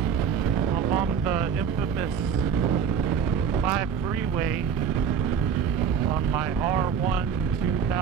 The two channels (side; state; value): left; quieter; 7.2 dB